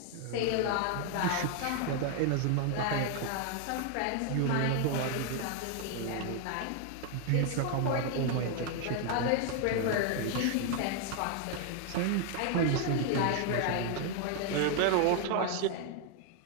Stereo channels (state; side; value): different; both; correlation 0.00